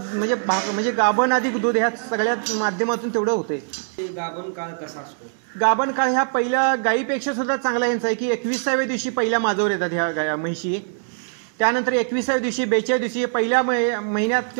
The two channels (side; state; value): left; silent; digital silence